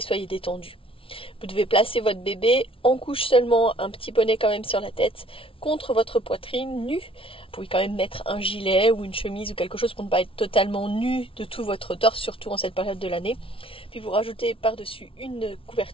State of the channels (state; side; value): late; right; 0.26 ms